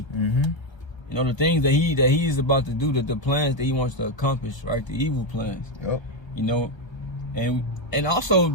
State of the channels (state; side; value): late; right; 1.3 ms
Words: You know, the things that he is about to do, the plans that he wants to accomplish, right? The evil plans. Yep. You know, and also